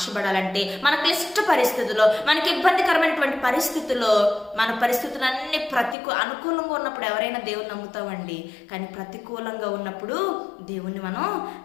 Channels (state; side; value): drops out; right; at 6.0 s